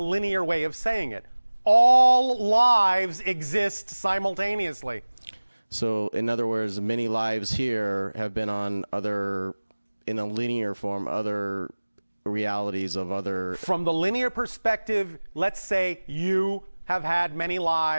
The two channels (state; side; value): inverted; both; correlation -1.00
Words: way of saying it. All lives exist simultaneously. So, in other words, many lives here have been on in a linear form, other realities of other. From the linear perspective, let's say you have had many